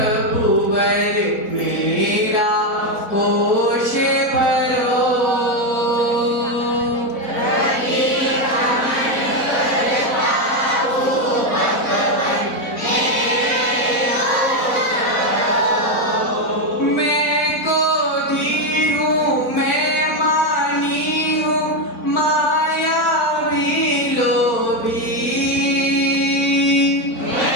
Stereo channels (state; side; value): late; right; 4.1 ms